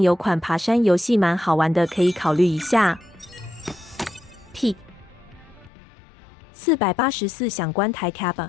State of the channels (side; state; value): right; drops out; at 5.7 s